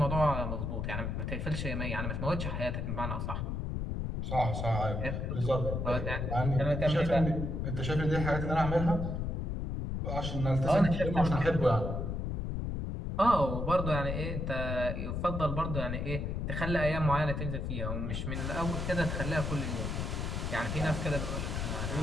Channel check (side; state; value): left; noise; rumble, 2 dB below the sound